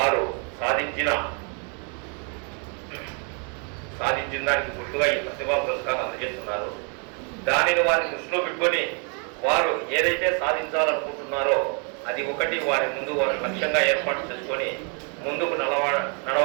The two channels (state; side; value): quieter; left; 38.4 dB